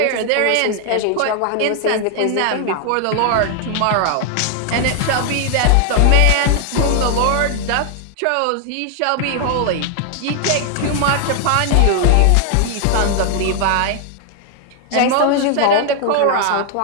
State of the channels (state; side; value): different; both; correlation 0.00